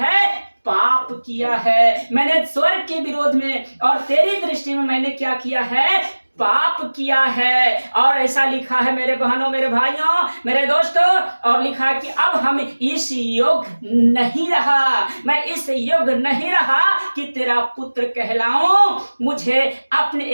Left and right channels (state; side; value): inverted; both; correlation -1.00